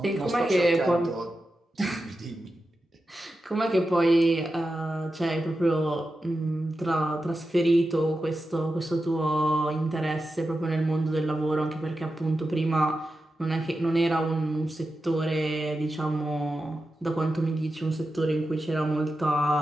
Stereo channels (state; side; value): normal; both; correlation 0.91